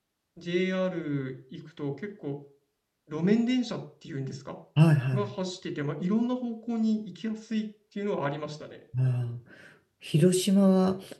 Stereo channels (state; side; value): identical; both; correlation 1.00